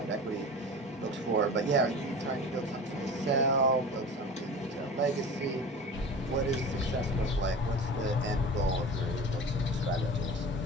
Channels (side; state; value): both; normal; correlation 0.35